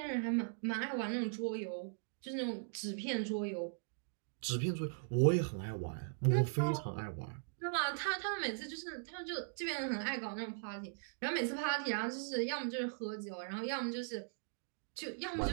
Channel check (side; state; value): left; silent; digital silence